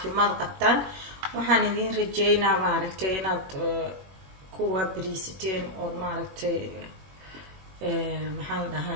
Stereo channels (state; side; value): late; left; 21 ms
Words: قبطان وحان إذين رجينا ماركتي إناد كوا بريستين أو ماركتي محال